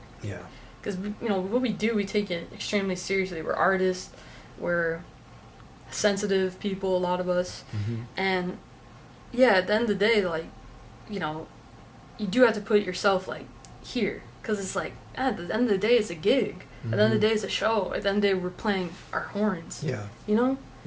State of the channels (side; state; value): both; identical; correlation 1.00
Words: Yeah. because, you know, what we do, we take it extremely seriously. We're artists. We're sensitive people, a lot of us. Mm-hmm. And, yeah, at the end of the day, like, you know, you do have to put yourself, like, here. Because it's like, at the end of the day, it's a gig. At the end of the day, it's a show. At the end of the day, we're playing our horns. Yeah. You know?